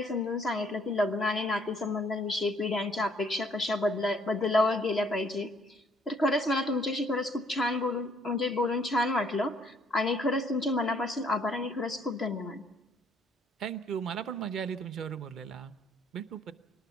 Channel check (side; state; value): both; normal; correlation 0.64